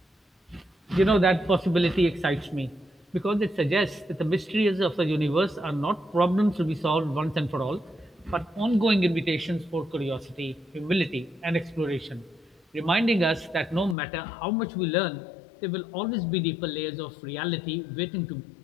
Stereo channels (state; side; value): drops out; right; at 14.0 s